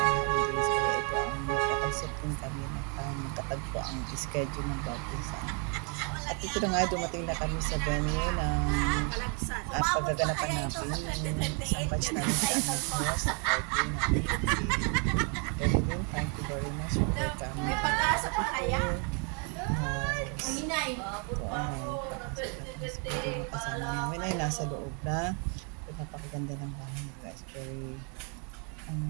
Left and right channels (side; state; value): left; quieter; 35.2 dB